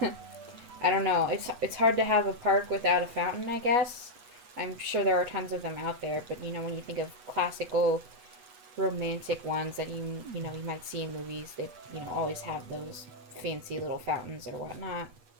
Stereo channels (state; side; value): late; left; 8.2 ms